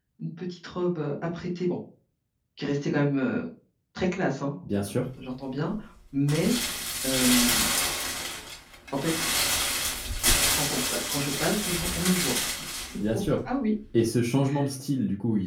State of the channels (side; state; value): both; identical; correlation 1.00